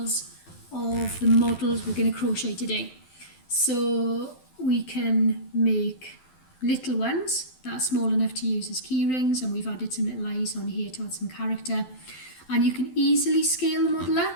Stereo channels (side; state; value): right; late; 12 ms